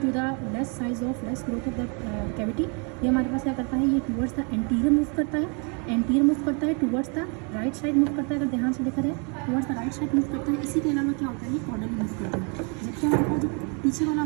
the less size of less growth of the cavity, ये हमारे पास क्या करता है, ये टुवर्ड्स द एंटीरियर मूव करता है, एंटीरियर मूव करता है, towards the right side move करता है। अगर ध्यान से देखा जाए, towards the right side move करता है। इसी के अलावा क्या होता है, ये कॉर्डल मूव करता है। जबकि हमारे पास जो पीछे वाला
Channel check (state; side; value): quieter; left; 35.6 dB